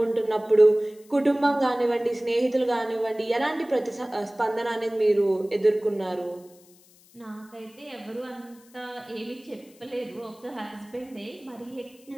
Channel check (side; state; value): left; noise; hiss, 27 dB below the sound